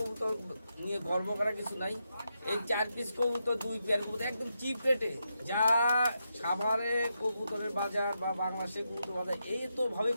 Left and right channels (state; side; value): inverted; both; correlation -0.84